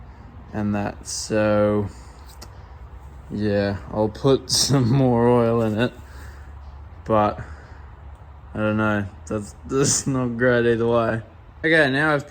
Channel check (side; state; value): both; identical; correlation 1.00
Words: and that. So yeah, I'll put some more oil in it. But I don't know, that's not great either way. Okay, now I've